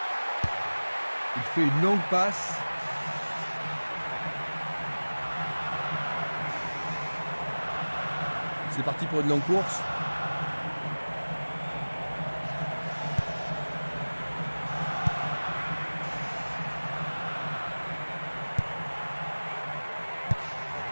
Il fait une longue passe. C'est parti pour une longue course.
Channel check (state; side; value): inverted; both; correlation -1.00